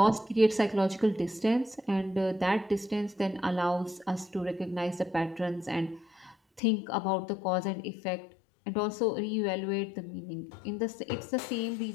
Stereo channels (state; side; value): drops out; right; at 6.6 s